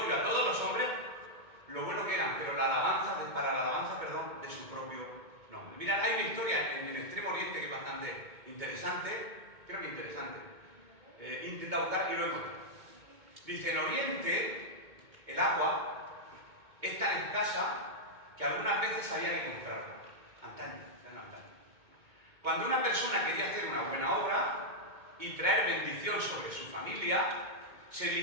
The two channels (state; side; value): late; left; 2.2 ms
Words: a todos los hombres lo bueno que eran, pero para la alabanza de su propio nombre. Mirad, hay una historia en Extremo Oriente que es bastante interesante, creo que interesante. Intenta buscar y lo encuentro. Dice, en Oriente, el agua es tan escasa que algunas veces había que comprarla. Antaño. Cuando una persona quería hacer una buena obra y traer bendición sobre su familia, se